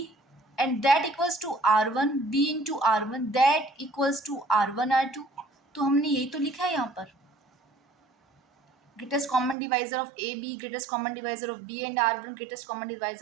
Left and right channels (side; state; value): left; drops out; at 9.6 s